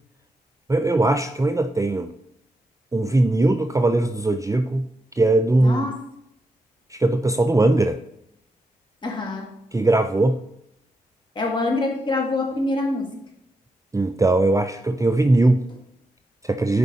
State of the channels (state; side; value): normal; both; correlation 0.85